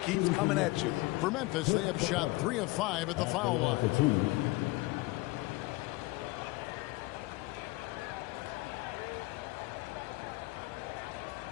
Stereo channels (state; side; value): quieter; right; 21.8 dB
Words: keeps coming at you. For Memphis, they have shot 3 of 5 at the foul line.